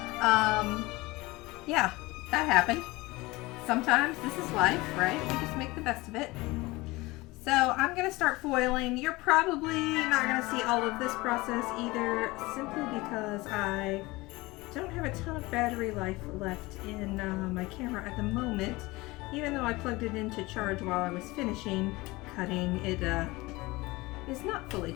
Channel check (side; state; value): right; quieter; 21.6 dB